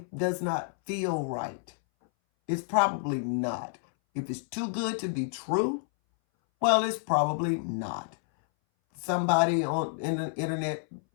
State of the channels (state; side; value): silent; right; 58 dB below the other